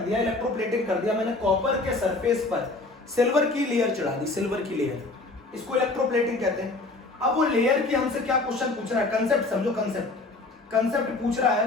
इलेक्ट्रोप्लेटिंग कर दिया। मैंने कॉपर के सरफेस पर सिल्वर की लेयर चढ़ा दी, सिल्वर की लेयर, इसको इलेक्ट्रोप्लेटिंग कहते हैं। अब वो लेयर की हमसे क्या क्वेश्चन पूछ रहा है, कंसेप्ट समझो, कंसेप्ट पूछ रहा है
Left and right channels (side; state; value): right; quieter; 3.2 dB